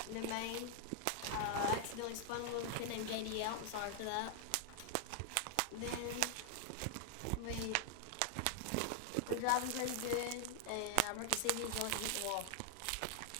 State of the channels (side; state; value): both; different; correlation 0.00